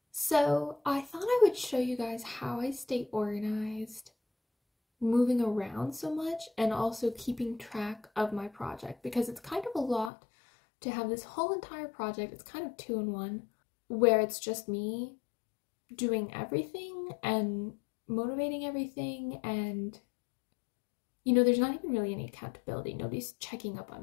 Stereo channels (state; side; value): drops out; right; at 10.1 s